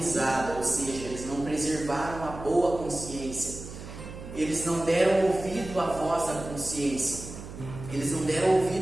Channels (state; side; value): noise; right; hum, 12 dB below the sound